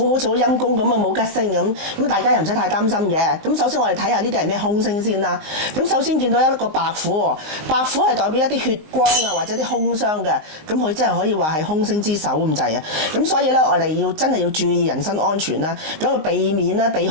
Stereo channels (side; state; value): left; late; 19 ms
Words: 好似好陰公咁啊，冇吉星咁大家又唔使太擔心嘅。咁首先我哋睇下呢啲係咩凶星先啦。咁首先見到一個白虎喎，白虎係代表一啲血光啊或者啲兇傷嘅，咁佢真係可以話係兇星之首咁滯啊。咁所以咧我哋真係要注意人身安全啦，咁啊避免啦，避